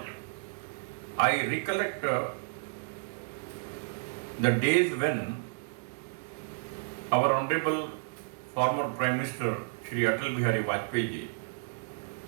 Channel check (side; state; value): left; silent; digital silence